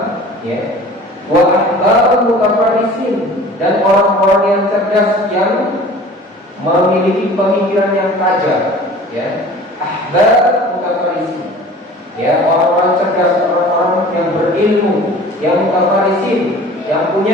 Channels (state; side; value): normal; both; correlation 0.44